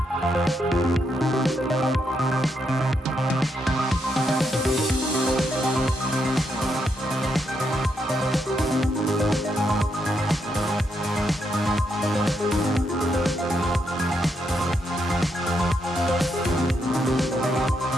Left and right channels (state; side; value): normal; both; correlation 0.79